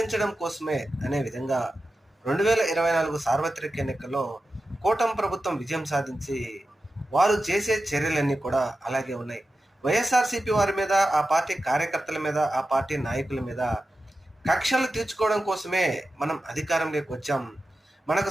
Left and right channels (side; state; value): both; normal; correlation 0.92